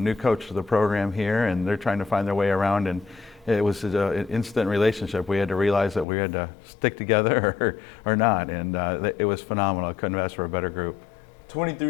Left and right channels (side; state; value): right; drops out; at 6.1 s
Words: coach for the program here, and they're trying to find their way around. And it was an instant relationship. We had to realize that we had to stick together or not, and it was phenomenal. I couldn't have asked for a better group.